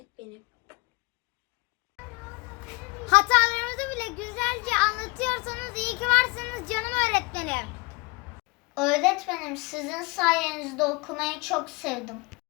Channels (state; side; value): quieter; right; 27.4 dB